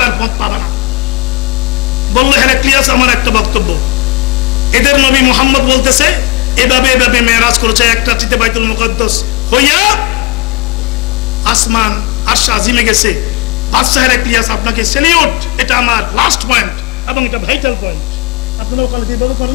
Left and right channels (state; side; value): quieter; right; 21.9 dB